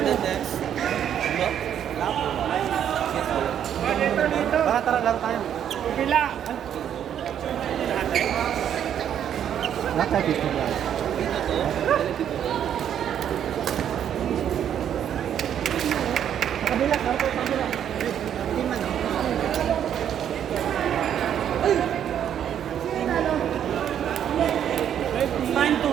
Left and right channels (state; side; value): quieter; left; 9.5 dB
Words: next. Tara lang tayo. Pila. Lahat tayo dito lang. Kabila, kabila.